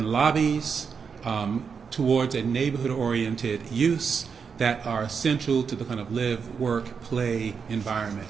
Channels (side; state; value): left; quieter; 6.1 dB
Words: lobbies towards a neighborhood-oriented use that are essential to the kind of live, work, play environment.